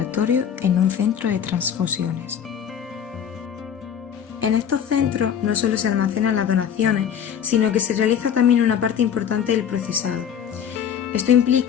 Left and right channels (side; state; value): right; quieter; 8.5 dB